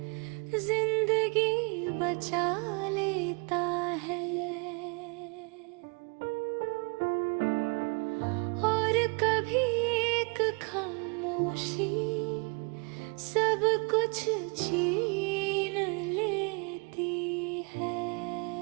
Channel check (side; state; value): left; quieter; 32.7 dB